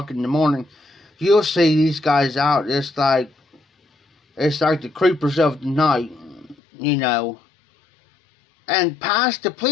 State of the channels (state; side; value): drops out; right; at 6.6 s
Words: in the morning, you'll see these guys out. It's like the creepers of the night, and past the